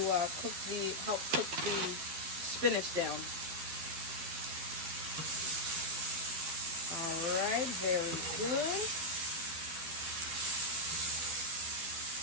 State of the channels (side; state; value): left; late; 12 ms